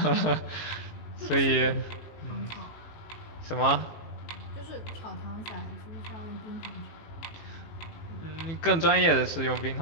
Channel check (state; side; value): late; right; 18 ms